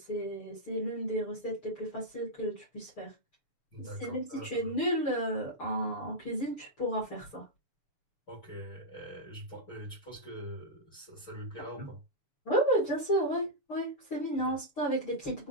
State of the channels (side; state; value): right; late; 6.9 ms